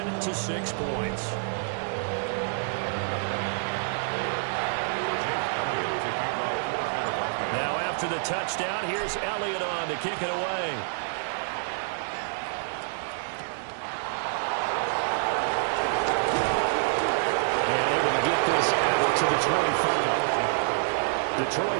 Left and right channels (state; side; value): silent; left; 60 dB below the other